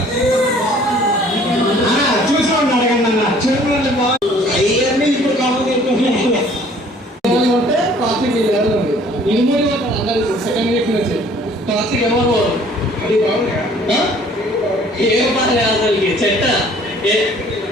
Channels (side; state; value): both; normal; correlation 0.55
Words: చూసుకోండి అడగండి అన్న చూడండి అవన్నీ ఇప్పుడు కావాలి ట్రాఫిక్ ఇనుమూరి అందరు సెకండ్ వీక్ నుంచి ట్రాఫిక్ ఎవరు అది బాగుంది ఏం పని అసలు చెట్ట